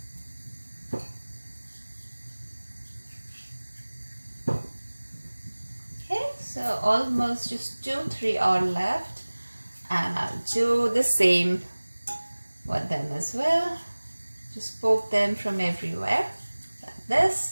So almost just 2-3 are left, and I'll do the same with them as well. Just poke them from everywhere like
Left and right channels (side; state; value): both; inverted; correlation -1.00